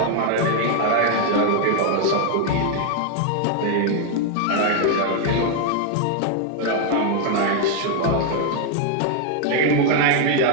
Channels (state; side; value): different; both; correlation 0.00